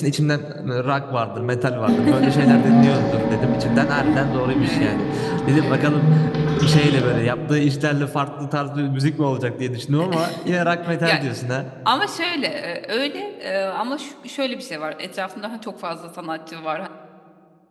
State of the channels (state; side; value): identical; both; correlation 1.00